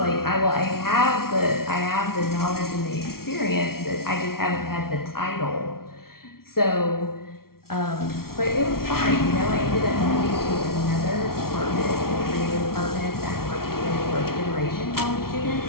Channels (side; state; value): right; late; 0.94 ms